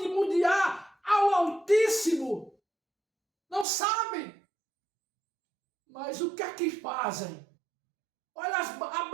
ao Altíssimo. Não sabe. Mas o que é que fazem? Olha a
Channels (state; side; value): drops out; left; at 3.7 s